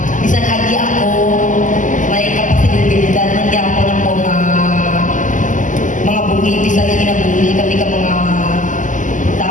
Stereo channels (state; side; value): late; right; 0.37 ms